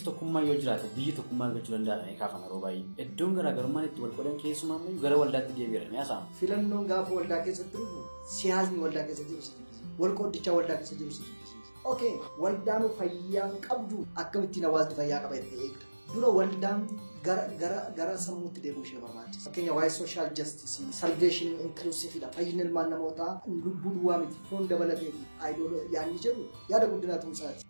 tokkummaa yoo jiraate biyyi tokkummaa argachuu danda'a kaafama yeroo baay'ee. Iddoon garaagarummaan itti wal qodan keessumaa immoo gara waldaatti deebi'eera ni haasa'ama. Filannoon gaafa waldaa keessatti dhufu siyaasni waldaa keessa jiru si jibbisiisa. Wal qoddichaa waldaa keessa jiru si jibbisiisa. Okay, waldaan fayyaa qabdu akkamittiin hawaasni fayyaa qaba itti eegda. Dura waldaan gara sammuutti deebi'uu ishee barbaachisa. Fakkeenya waa'ee sooshaal jastisii, salveeshinii inklusiividha. Fayyina ilmaan namootaa lubbuu duwwaa miti foon dabalatee aayidoo yaadni jedhu yaada guddinaa tumsaati.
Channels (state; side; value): inverted; both; correlation -1.00